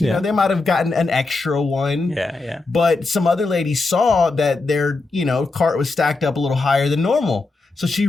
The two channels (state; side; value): quieter; right; 3.6 dB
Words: know, they might have gotten an extra one. Yeah. But some other lady saw that their, cart was stacked up a little higher than normal. So she